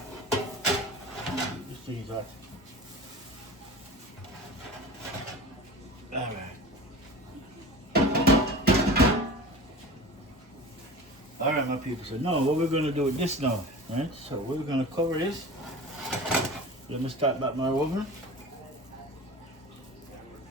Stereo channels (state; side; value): normal; both; correlation 0.36